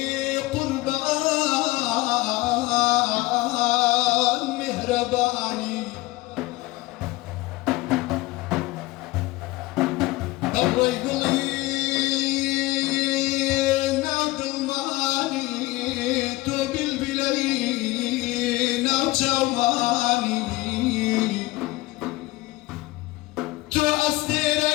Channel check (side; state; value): right; quieter; 20.1 dB